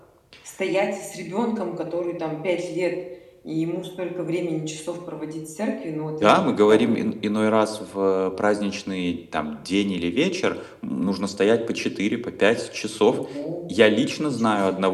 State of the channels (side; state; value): both; identical; correlation 1.00